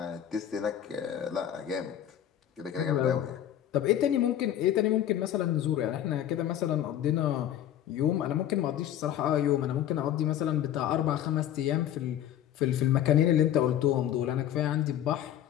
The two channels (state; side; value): quieter; right; 11.2 dB